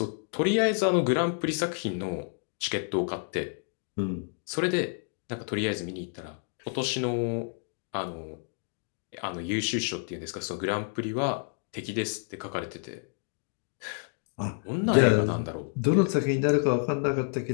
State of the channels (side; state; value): right; silent; 56 dB below the other